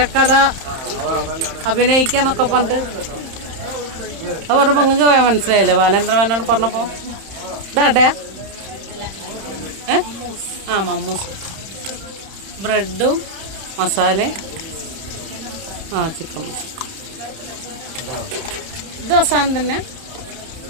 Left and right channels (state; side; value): late; left; 31 ms